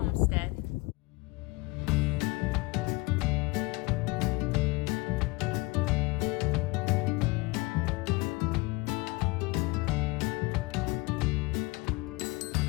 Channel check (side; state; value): right; quieter; 24.1 dB